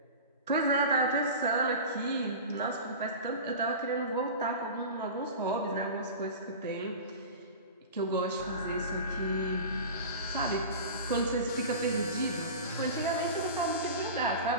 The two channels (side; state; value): both; inverted; correlation -0.32